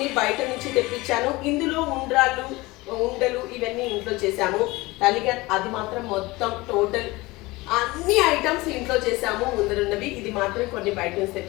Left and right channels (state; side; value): quieter; right; 21.5 dB